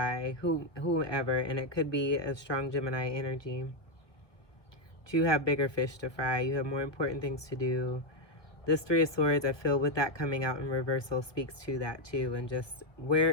whoever, and it could be a strong Gemini energy. But you have bigger fish to fry. You have more important things to do. This Three of Swords, I feel with that coming out in reversal, speaks to that too, and just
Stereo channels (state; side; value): late; right; 1.0 ms